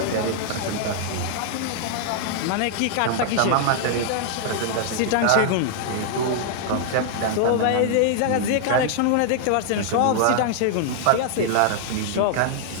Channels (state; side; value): different; both; correlation -0.01